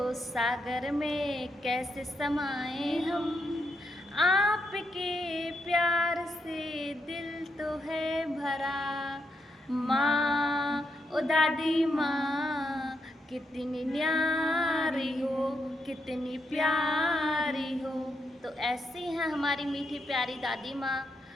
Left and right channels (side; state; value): both; normal; correlation 0.81